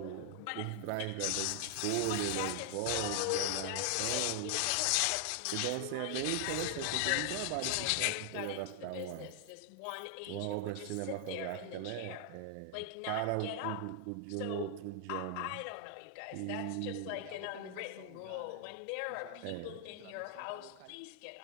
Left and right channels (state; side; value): different; both; correlation 0.00